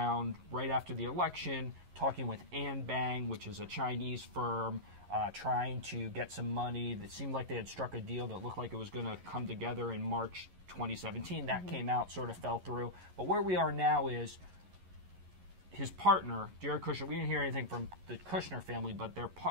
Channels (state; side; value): late; left; 11 ms